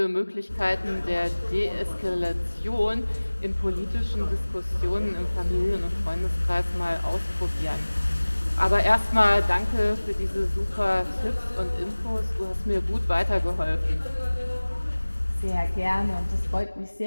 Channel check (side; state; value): both; inverted; correlation -1.00